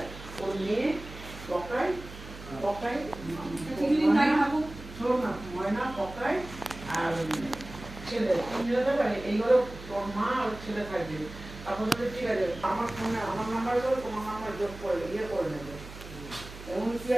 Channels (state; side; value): noise; right; hum, 14 dB below the sound